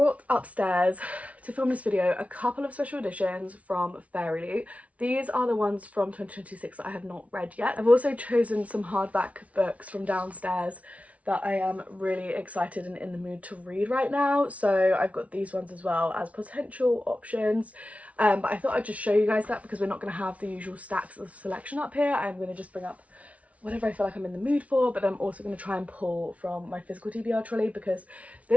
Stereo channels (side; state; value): left; late; 0.066 ms